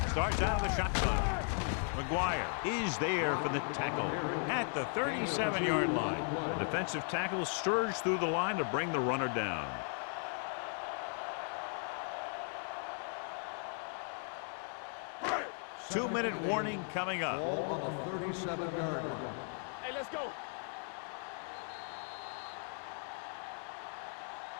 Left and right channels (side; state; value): right; silent; 53 dB below the other